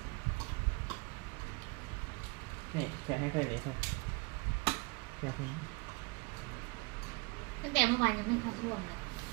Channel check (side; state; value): left; quieter; 27.9 dB